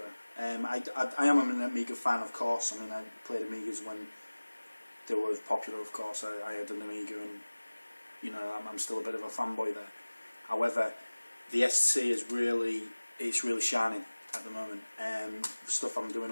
I am an Amiga fan, of course. I mean, I played Amigas when they were popular, of course. I had an Amiga, and you know, I'm still a bit of a fanboy there. However, the ST is really shining at the moment. The stuff I'm doing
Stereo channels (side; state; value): both; inverted; correlation -1.00